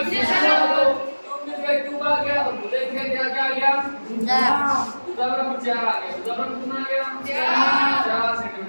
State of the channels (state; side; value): inverted; both; correlation -1.00